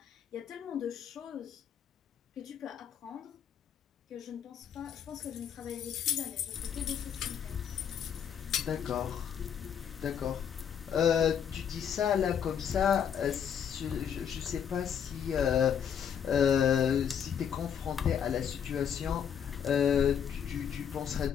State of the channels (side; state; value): right; quieter; 8.3 dB